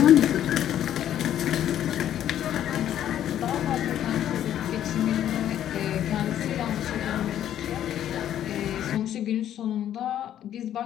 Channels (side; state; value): right; quieter; 11.0 dB